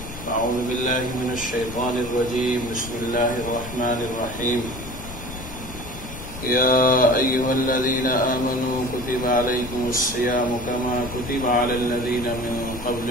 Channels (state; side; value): noise; left; rumble, 12 dB below the sound